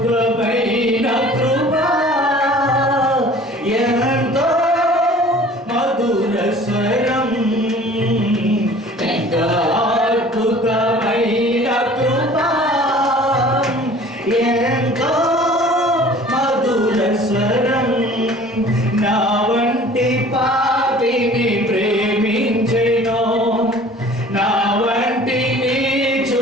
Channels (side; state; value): both; normal; correlation 0.48